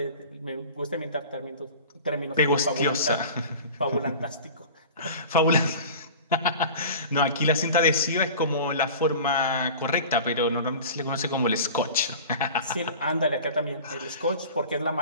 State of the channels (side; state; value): both; inverted; correlation -0.38